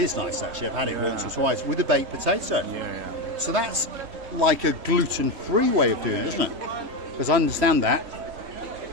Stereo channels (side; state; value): left; late; 3.2 ms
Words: nice actually. I've had it once or twice with a baked potato. Yeah. So that's like a gluten-free way of doing it, isn't it? Because I understand that,